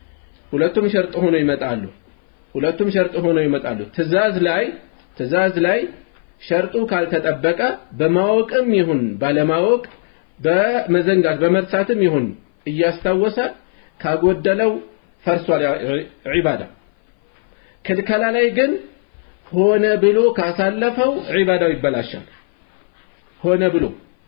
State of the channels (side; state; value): right; silent; 59 dB below the other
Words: ሁለቱም ሸርጥ ሆነው ይመጣሉ ትእዛዝ ላይ ሸርጡ ካልተጠበቀ በማወቅም ይሁን ባለማወቅ በመዘንጋት በመርሳትም ይሁን እያስታወሰ ካጎደለው ፈርሷል ዒባዳ ክልከላ ላይ ግን ሆነ ብሎ ካሳለፈው ዒባዳው ይበላሻል ሆነ ብሎ